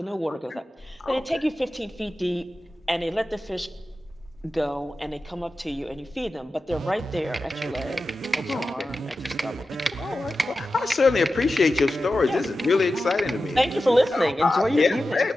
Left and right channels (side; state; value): both; normal; correlation 0.93